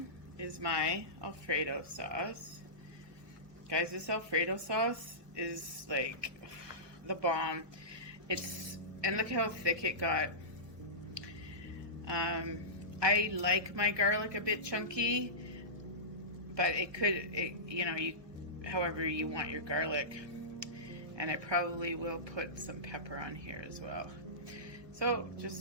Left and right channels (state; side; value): late; left; 1.2 ms